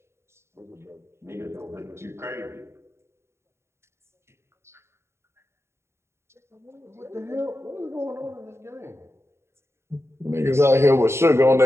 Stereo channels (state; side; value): late; left; 0.13 ms